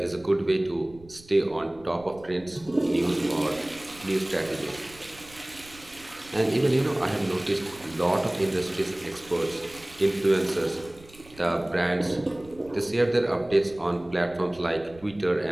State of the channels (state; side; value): noise; right; rumble, 23 dB below the sound